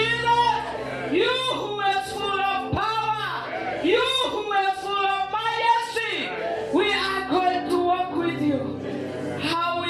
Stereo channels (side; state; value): both; identical; correlation 1.00